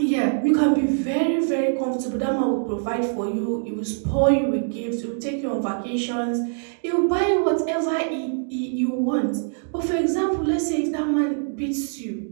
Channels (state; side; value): silent; left; digital silence